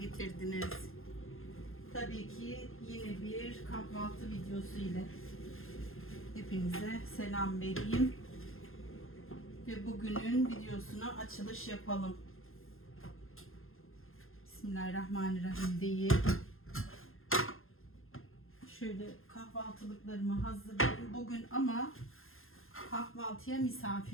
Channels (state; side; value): late; right; 0.60 ms